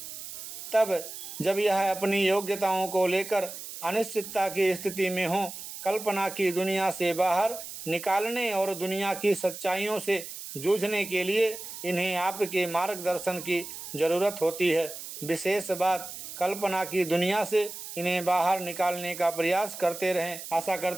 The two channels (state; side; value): noise; right; hiss, 10 dB below the sound